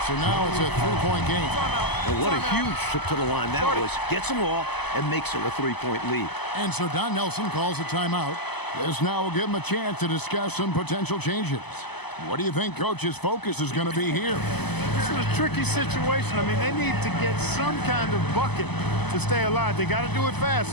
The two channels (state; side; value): late; right; 0.99 ms